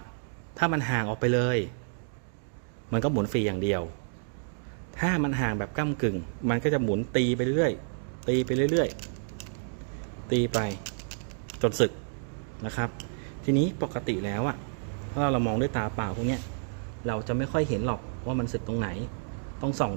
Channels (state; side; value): silent; left; digital silence